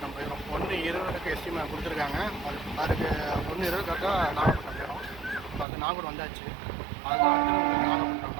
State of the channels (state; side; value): drops out; left; at 5.7 s